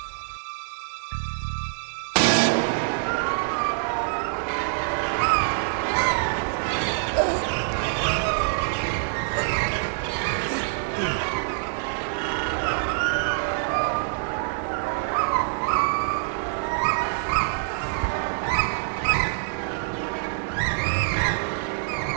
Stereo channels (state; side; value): silent; left; digital silence